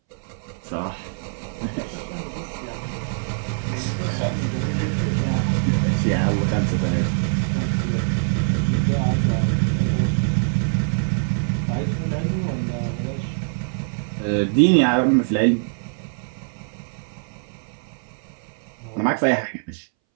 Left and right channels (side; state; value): left; silent; 62 dB below the other